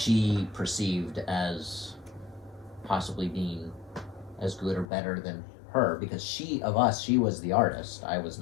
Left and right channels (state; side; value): drops out; right; at 4.9 s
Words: perceived as possibly being as good or better than her, because she was the artist, I was